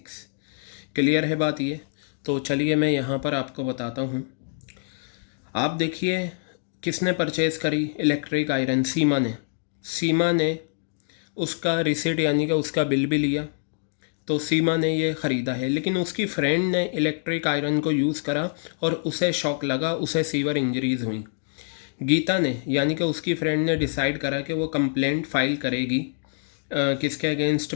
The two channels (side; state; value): right; silent; digital silence